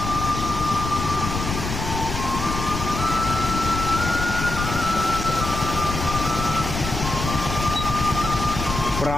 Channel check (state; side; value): noise; left; rumble, 5 dB below the sound